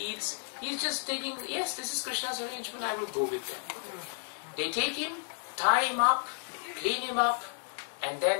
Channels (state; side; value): silent; right; 56 dB below the other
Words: eats. He's just taking, yes, this is Krishna's arrangement, I will go with them. They take him, tie him up, clean him up, and